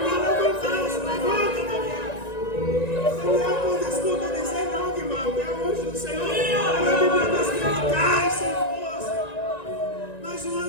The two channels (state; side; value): late; right; 1.9 ms